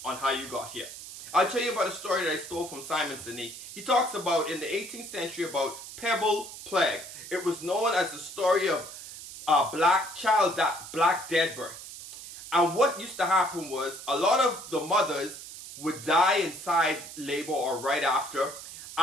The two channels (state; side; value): noise; right; hiss, 13 dB below the sound